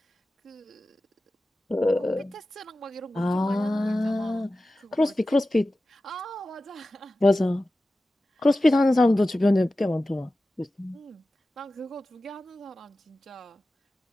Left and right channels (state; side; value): normal; both; correlation 0.95